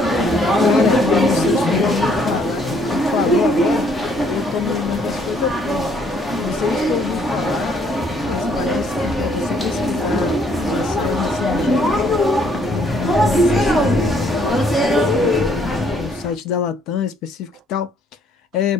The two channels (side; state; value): both; normal; correlation 0.66